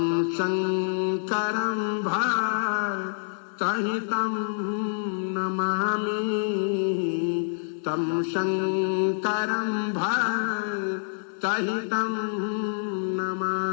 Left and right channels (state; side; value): silent; right; 60 dB below the other